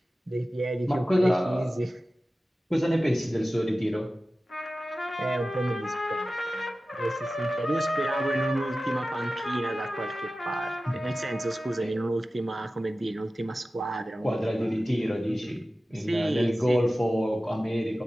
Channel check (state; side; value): normal; both; correlation 0.95